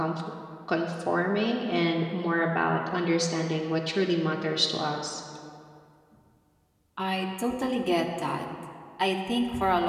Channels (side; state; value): both; identical; correlation 1.00